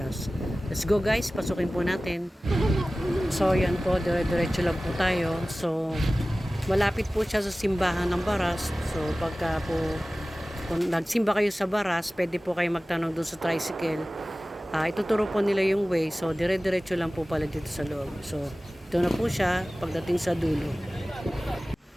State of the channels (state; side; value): normal; both; correlation 0.97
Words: Let's go guys, pasukin po natin. So yan po, dire-diretso lang po tayo. So malapit po siya sa simbahan ng Baras. So pagka po kung nagsimba kayo sa Baras, pwede po kayo magtanong doon sa tricycle. Ituturo po nila yung way. So dire-diretso lang po pala dito sa loob. So ito na po siya pagdating sa dulo.